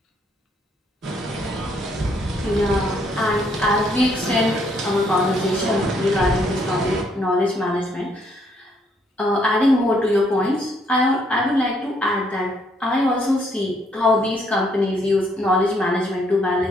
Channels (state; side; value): normal; both; correlation 0.70